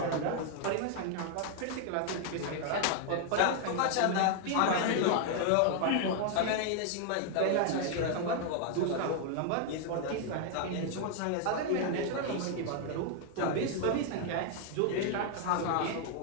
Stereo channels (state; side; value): different; both; correlation 0.00